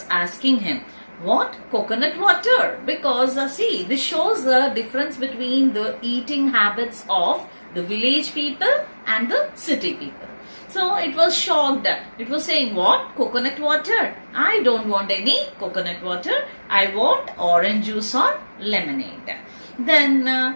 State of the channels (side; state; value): both; inverted; correlation -1.00